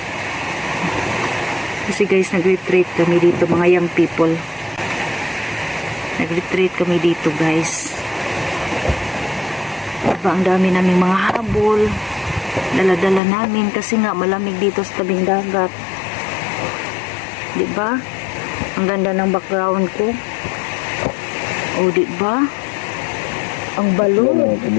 Kasi guys, nag-retreat kami dito, mga young people. Nag-retreat kami dito, guys. Diba, ang dami naming mga habol. Dala-dala namin kasi nga malamig dito sa tabing dagat. Diba? Ang ganda ng background ko. O, diba? Ang balon.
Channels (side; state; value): right; drops out; at 13.2 s